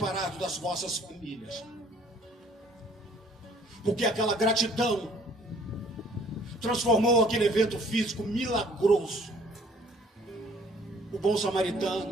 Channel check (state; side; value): normal; both; correlation 0.57